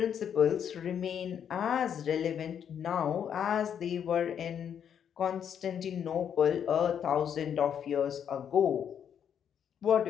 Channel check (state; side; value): quieter; right; 8.5 dB